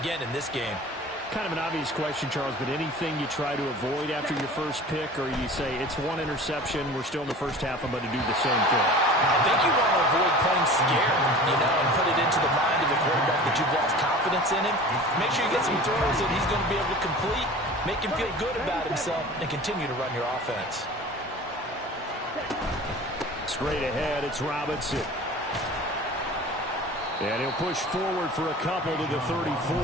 in this game. Kind of an obvious question, Charles, but anything you try to avoid after your first pick, or you say it's one interception, we're still in the first half, I'm going to do the same thing? I think you want to avoid playing scared, and put it into the mind of the quarterback that you've lost confidence in him. Make sure you get some throws that he's going to be able to complete, make him feel good about himself, and continue to run your offense. Straight ahead, it's Robinson. And he'll push forward for a couple to the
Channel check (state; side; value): normal; both; correlation 0.40